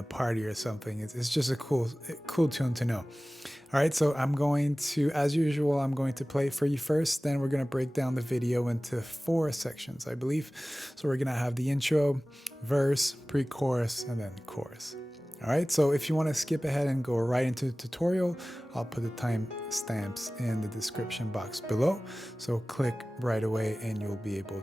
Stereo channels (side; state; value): both; normal; correlation 0.97